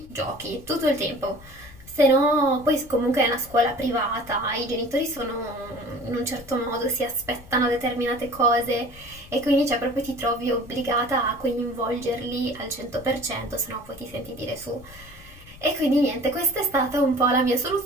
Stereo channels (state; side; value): noise; left; rumble, 20 dB below the sound